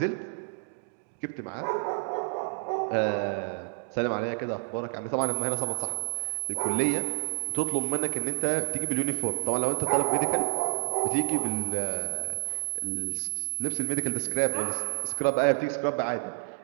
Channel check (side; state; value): left; silent; 56 dB below the other